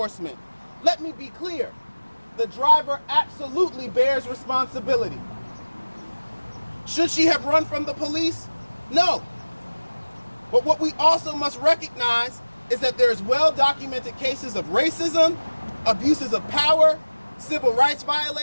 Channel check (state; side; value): inverted; both; correlation -1.00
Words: Let me be clear. The driver absolutely bears responsibility. Should she have run from the police? No. But what we also must recognize is that there's well-documented cases of racism, abuses of power, civil rights